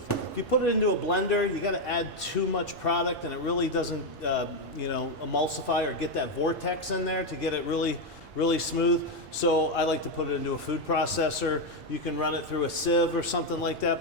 If you put it into a blender, you got to add too much product, and it really doesn't, you know, emulsify or get that vortex in there to get it really smooth. So I like to put it into a food processor. You can run it through a sieve or something like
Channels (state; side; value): normal; both; correlation 0.05